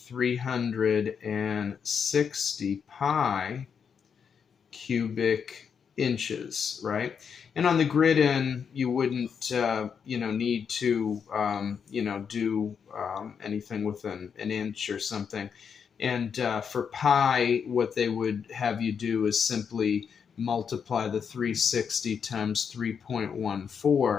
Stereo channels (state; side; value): quieter; right; 6.8 dB